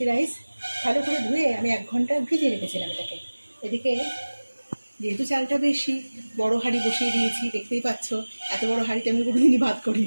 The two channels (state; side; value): inverted; both; correlation -1.00